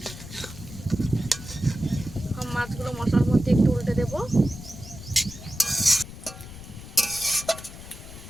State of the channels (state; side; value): noise; left; rumble, 14 dB below the sound